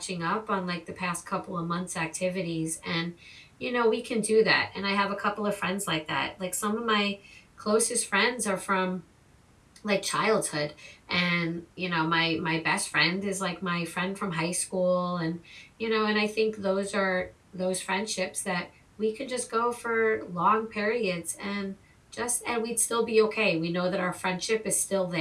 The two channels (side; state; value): both; identical; correlation 1.00